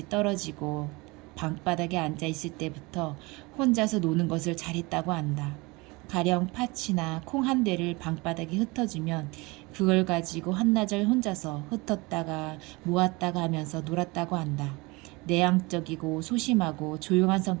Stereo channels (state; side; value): quieter; left; 24.8 dB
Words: 떨어지고 방바닥에 앉아 있을 때부터 혼자서 노는 것을 잘했다고 한다. 가령 팥이나 콩 한 대를 방바닥에 흩어주면 그걸 가지고 한나절 혼자서 흩었다가 모았다가 하면서 놀았다고 한다. 내향적이고 소심하고 조용한